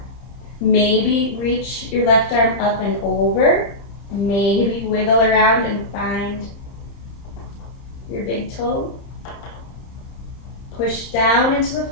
Maybe reach your left arm up and over. Maybe wiggle around and find your big toe. Push down into the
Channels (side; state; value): right; late; 31 ms